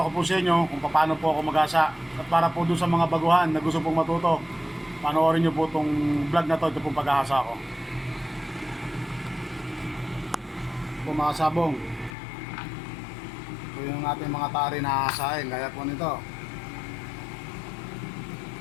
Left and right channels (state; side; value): drops out; right; at 12.1 s